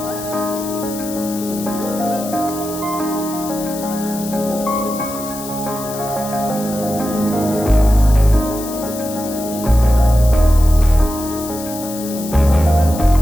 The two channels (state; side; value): noise; left; hiss, 12 dB below the sound